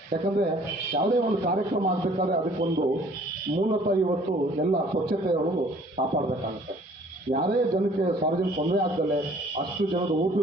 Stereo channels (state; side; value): normal; both; correlation 0.55